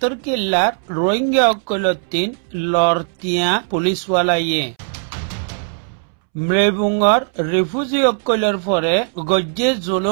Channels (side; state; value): left; silent; 67 dB below the other